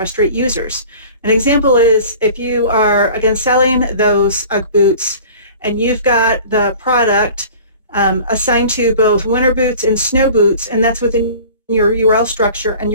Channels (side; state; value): both; inverted; correlation -0.44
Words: users. An example is if you are, again, selling those UGG boots, and you've got the product assigned to both winter boots and snow boots, and that's within your URL structure, and